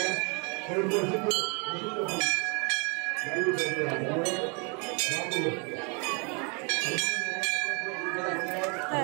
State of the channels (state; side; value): quieter; left; 34.1 dB